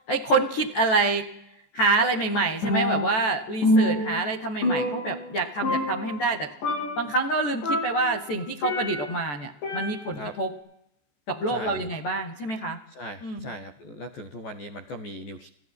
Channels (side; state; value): right; late; 14 ms